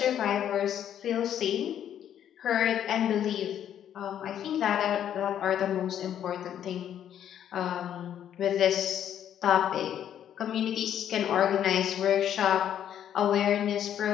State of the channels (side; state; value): right; quieter; 10.1 dB